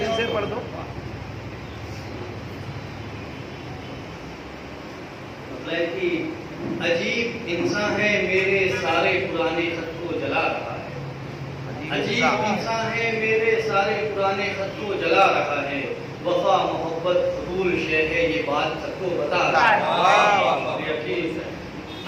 سے پڑھ دو۔ مطلب کہ عجیب انسان ہے میرے سارے پرانے خط کو جلا رہا ہے، عجیب انسان ہے میرے سارے پرانے خط کو جلا رہا ہے، وفا محبت فضول شے ہے یہ بات سب کو بتا رہا ہے۔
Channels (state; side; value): identical; both; correlation 1.00